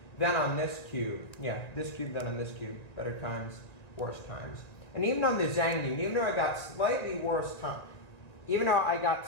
than on this cube. Yeah, this cube than on this cube. Better times, worse times. And even on the Zhangyun, even though I got slightly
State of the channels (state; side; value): late; right; 1.9 ms